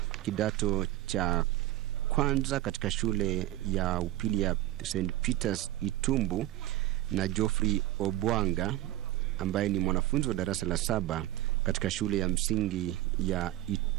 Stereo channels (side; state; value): left; quieter; 15.1 dB